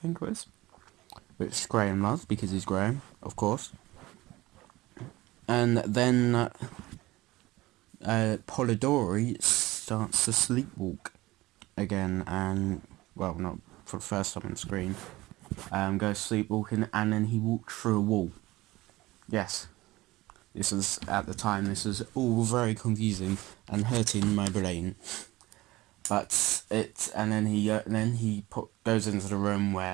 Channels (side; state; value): left; quieter; 18.9 dB